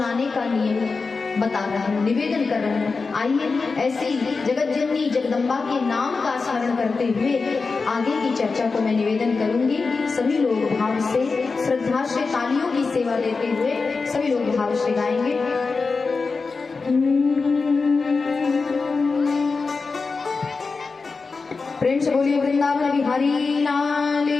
का नियम बता रहे हैं, निवेदन कर रहे हैं। आइए ऐसी जगत जननी जगदम्बा के नाम का स्मरण करते हुए आगे की चर्चा को मैं निवेदन करूंगी। सभी लोग भाव से, श्रद्धा से, तालियों की सेवा देते हुए सभी लोग भाव से गाएंगे। प्रेम से बोलिए वृंदावन बिहारी लाल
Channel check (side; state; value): right; quieter; 4.4 dB